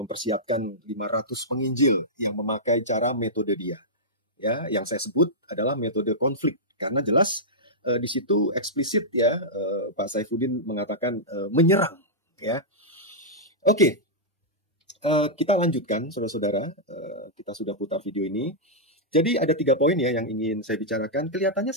500 penginjil yang memakai cara metode dia. Ya, yang saya sebut adalah metode konflik, karena jelas di situ eksplisit ya Pak Saifuddin mengatakan menyerang ya. Oke. Kita lanjutkan saudara-saudara, kita sudah putar video ini. Jadi ada 3 poin ya yang ingin saya bicarakan. Kelihatannya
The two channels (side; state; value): both; normal; correlation -0.10